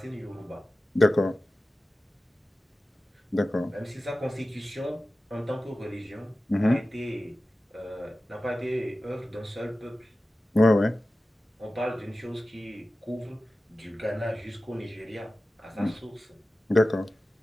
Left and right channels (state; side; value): normal; both; correlation 0.95